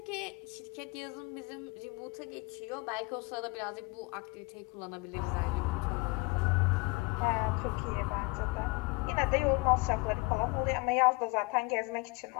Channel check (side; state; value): right; quieter; 26.1 dB